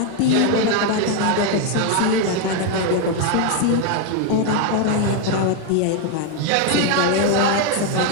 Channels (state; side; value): different; both; correlation 0.01